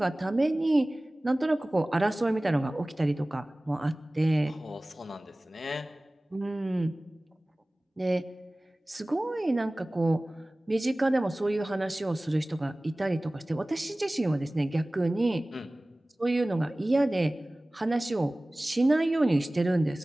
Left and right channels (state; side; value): normal; both; correlation 0.98